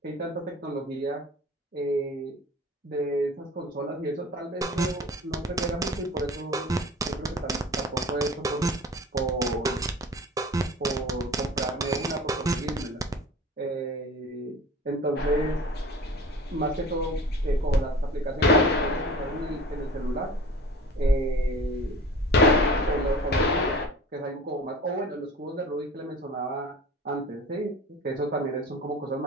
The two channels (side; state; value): both; normal; correlation 0.40